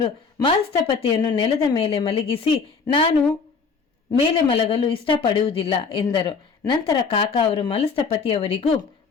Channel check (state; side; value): quieter; right; 5.2 dB